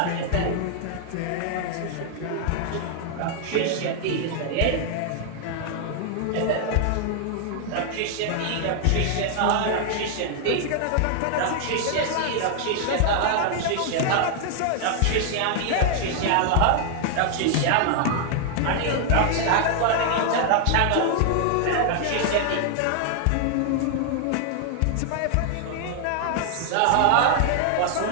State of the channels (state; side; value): different; both; correlation 0.00